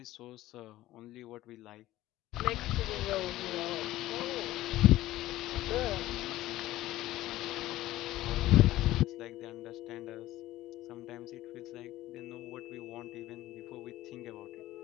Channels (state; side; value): quieter; right; 15.7 dB